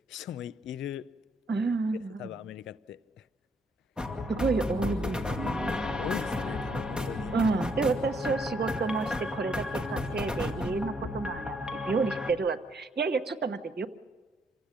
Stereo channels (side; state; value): both; normal; correlation 0.70